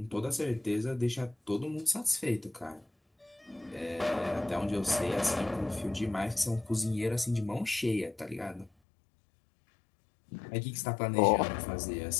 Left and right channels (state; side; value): drops out; right; at 8.7 s